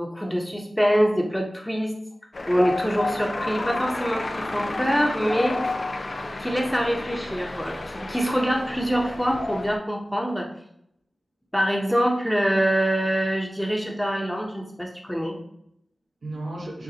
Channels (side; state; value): both; normal; correlation 0.97